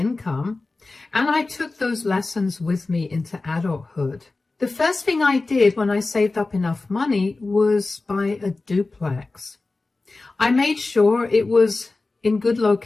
And I took those lessons with me into adulthood. The first thing I did when I saved up enough money was buy a duplex. I made sure it was in good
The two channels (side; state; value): right; quieter; 3.5 dB